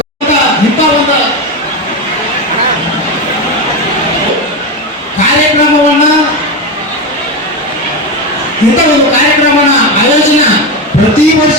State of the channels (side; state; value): both; normal; correlation 0.16